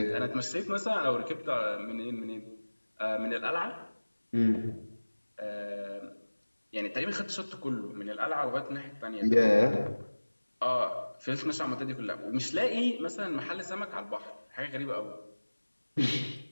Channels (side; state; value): both; inverted; correlation -1.00